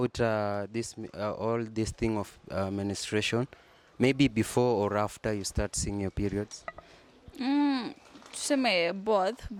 all this thing of menstruation? Maybe before or after you start seeing your periods? Tuseme both.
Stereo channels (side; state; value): both; identical; correlation 1.00